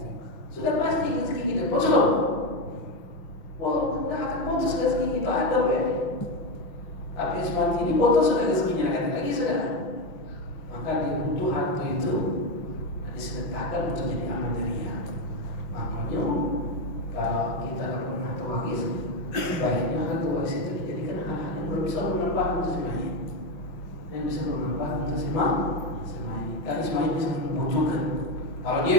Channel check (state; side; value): late; right; 5.9 ms